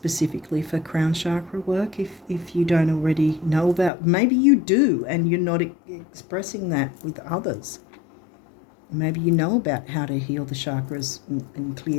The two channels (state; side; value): drops out; right; at 3.9 s